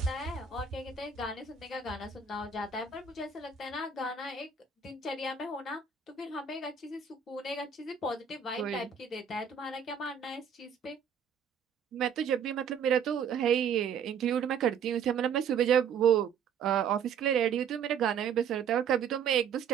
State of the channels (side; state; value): left; quieter; 6.8 dB